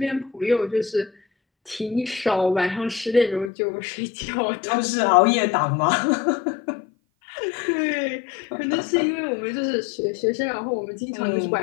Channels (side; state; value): right; drops out; at 3.5 s